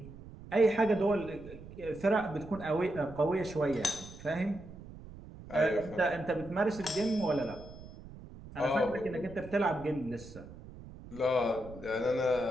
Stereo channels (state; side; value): noise; right; rumble, 16 dB below the sound